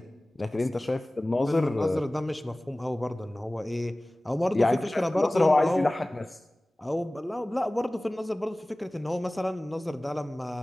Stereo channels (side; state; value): both; normal; correlation 0.98